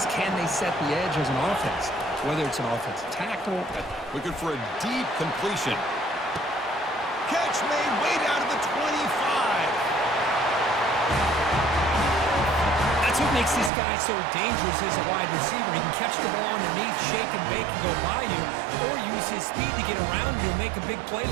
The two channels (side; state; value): left; drops out; at 13.7 s